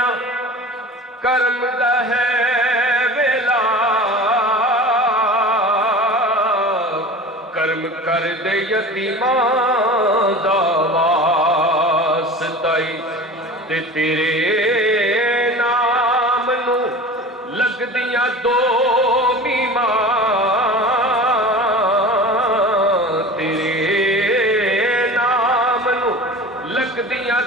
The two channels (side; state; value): both; normal; correlation 0.36